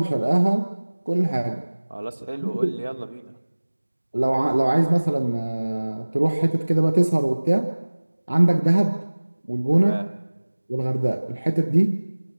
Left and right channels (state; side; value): inverted; both; correlation -1.00